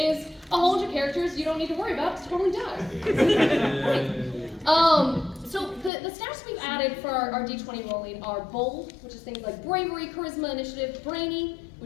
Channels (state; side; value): drops out; right; at 5.9 s